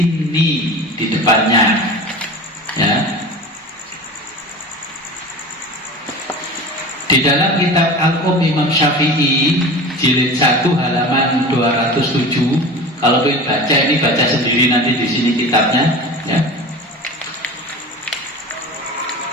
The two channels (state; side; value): normal; both; correlation 0.34